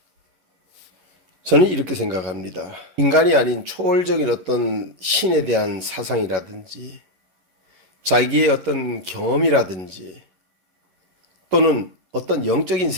저는 이렇게 생각합니다. 인간이 아닌 초월적인 어떤 신에 대한 사상이라든지 자기의 어떤 경험이라든지 또는 어떤 영적인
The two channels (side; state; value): left; late; 11 ms